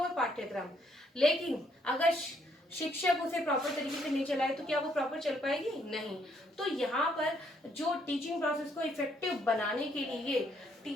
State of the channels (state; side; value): normal; both; correlation 0.70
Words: पाठ्यक्रम। लेकिन अगर शिक्षक उसे प्रॉपर तरीके से नहीं चलाए तो क्या वो प्रॉपर चल पाएगी, नहीं। तो यहाँ पर जो टीचिंग प्रोसेस को इफेक्टिव बनाने के लिए